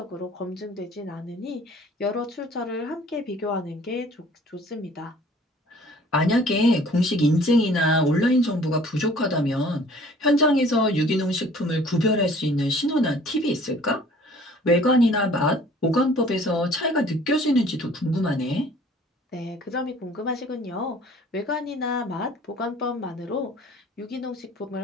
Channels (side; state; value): both; normal; correlation 0.52